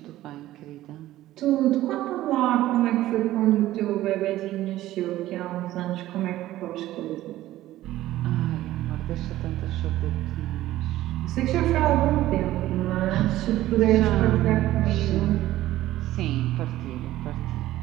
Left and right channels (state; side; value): quieter; left; 14.9 dB